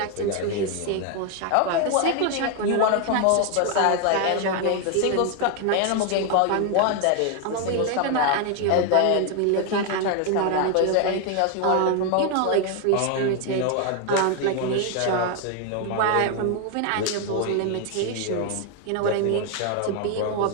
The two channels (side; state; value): both; different; correlation 0.01